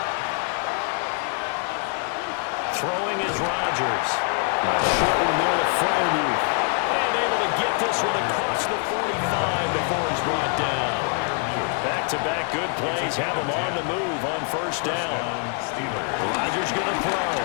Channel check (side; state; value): right; quieter; 39.4 dB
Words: Throwing is Rodgers. Short one there to Freiermuth. And able to get this one across the 45 before he's brought down. Back-to-back good plays have him on the move on first down. Rodgers going to throw.